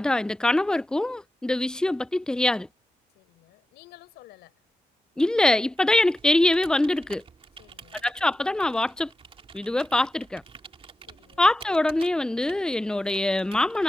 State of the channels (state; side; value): normal; both; correlation 0.92